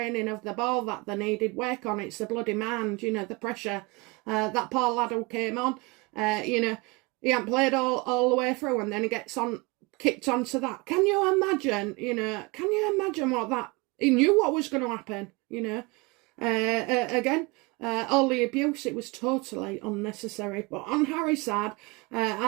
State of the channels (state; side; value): quieter; left; 26.3 dB